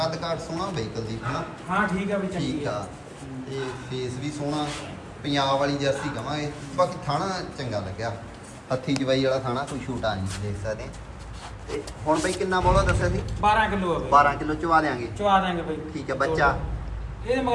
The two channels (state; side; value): identical; both; correlation 1.00